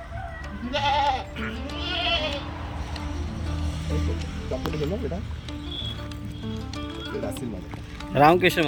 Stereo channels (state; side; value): identical; both; correlation 1.00